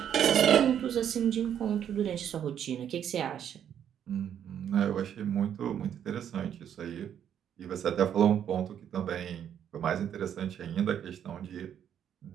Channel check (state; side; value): quieter; left; 9.3 dB